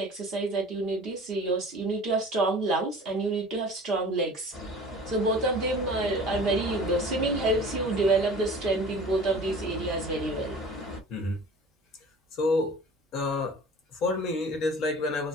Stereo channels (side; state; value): both; normal; correlation 0.43